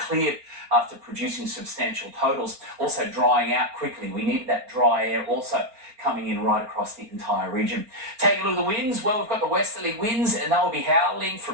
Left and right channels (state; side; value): late; left; 4.3 ms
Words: after producing substantial totals. Also drying out quickly. We needed that dry air also coming in right across the entire region. Taking a look at the winds, well, we've got the westerly winds and they'll be howling